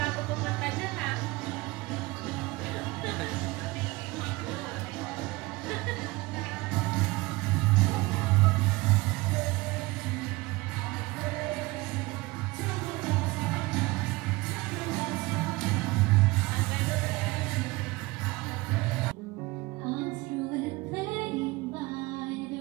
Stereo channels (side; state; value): left; quieter; 22.0 dB